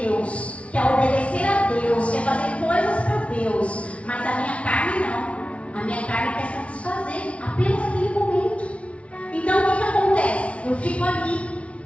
Deus, quer obedecer a Deus, quer fazer coisas para Deus. Mas a minha carne não. A minha carne quer satisfazer apenas aquele momento. Então o que acontece? Eu fico ali,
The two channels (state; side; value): late; right; 0.062 ms